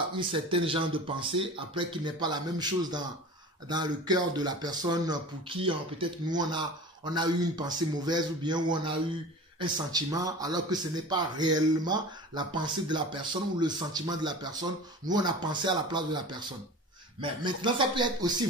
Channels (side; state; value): both; normal; correlation 0.36